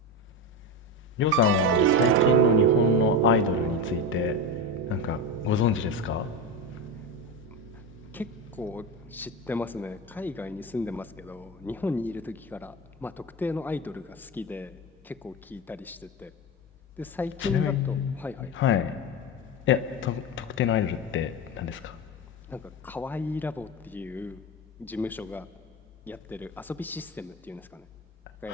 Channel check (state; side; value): normal; both; correlation 0.18